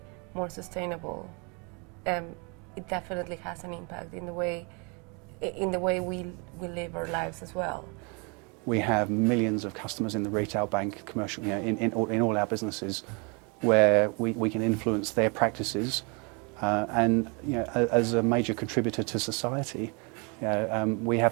more sustainable, it definitely has an impact in the way we live our lives as well. We have millions of customers in the retail bank, commercial, in all our businesses, where we can influence their practices, and as a major contributor to society, we have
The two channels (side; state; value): left; quieter; 32.7 dB